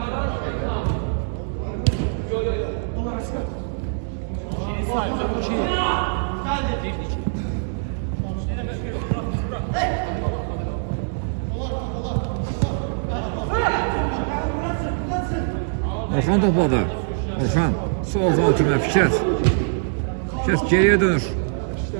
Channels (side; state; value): left; silent; digital silence